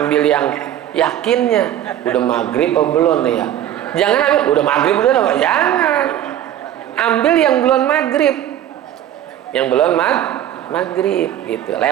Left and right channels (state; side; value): quieter; left; 11.4 dB